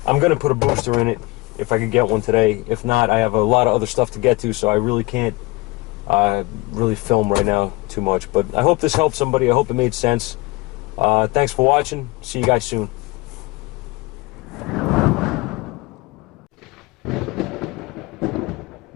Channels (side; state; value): right; quieter; 23.4 dB